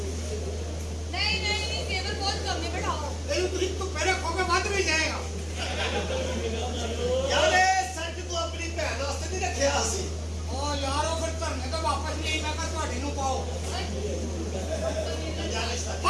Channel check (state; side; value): identical; both; correlation 1.00